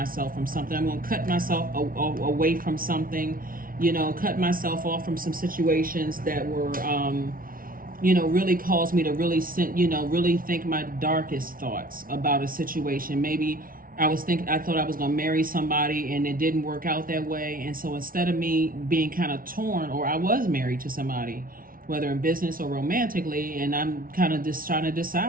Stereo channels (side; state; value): left; late; 0.42 ms